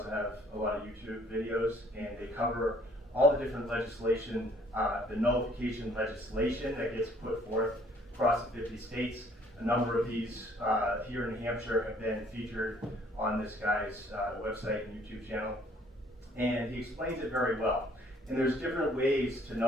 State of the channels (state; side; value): normal; both; correlation 0.60